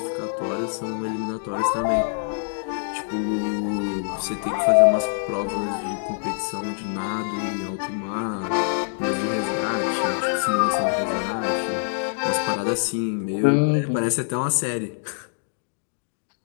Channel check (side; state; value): right; silent; digital silence